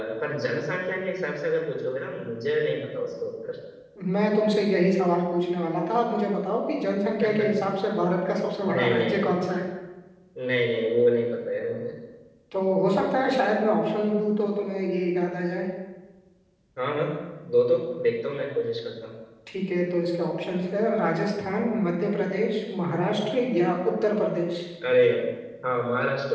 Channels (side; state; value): both; identical; correlation 1.00